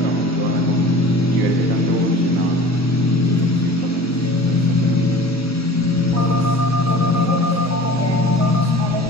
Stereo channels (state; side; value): normal; both; correlation 0.42